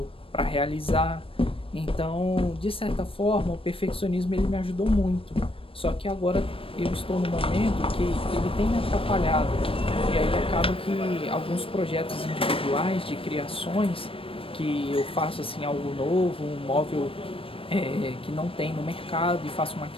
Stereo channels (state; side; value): late; right; 0.26 ms